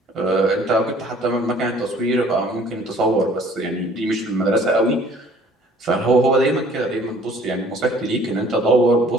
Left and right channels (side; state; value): both; normal; correlation 0.55